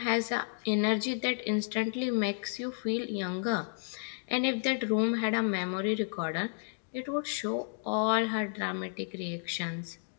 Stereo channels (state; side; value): silent; right; digital silence